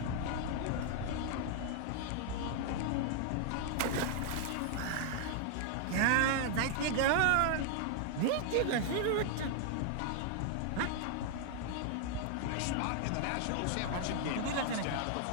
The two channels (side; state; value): both; different; correlation 0.00